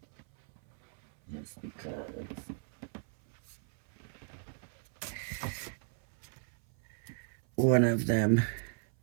just because one of them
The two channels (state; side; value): silent; left; 55 dB below the other